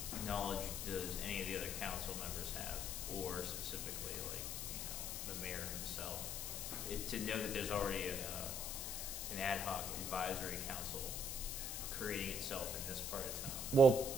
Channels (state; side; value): noise; left; hiss, 3 dB below the sound